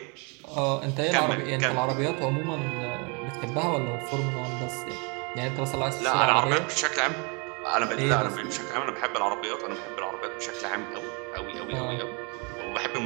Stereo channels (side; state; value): left; quieter; 32.8 dB